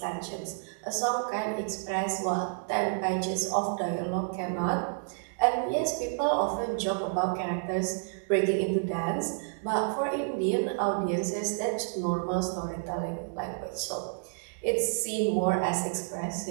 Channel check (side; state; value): left; silent; digital silence